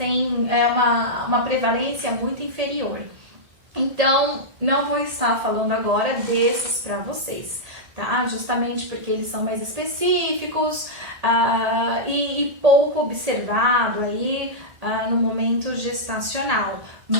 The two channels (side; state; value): left; late; 1.6 ms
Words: uma prevalência muito inferior. Então, não vou estar falando agora desses para vocês, tá? Justamente porque eles são mais específicos e pouco observado aí no momento gestacional.